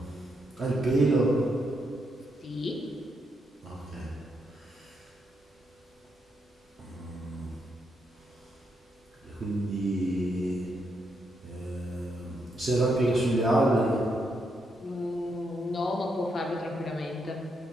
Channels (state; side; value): normal; both; correlation 0.80